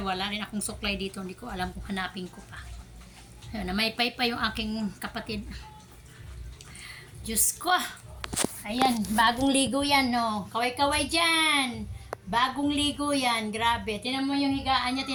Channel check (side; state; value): both; identical; correlation 1.00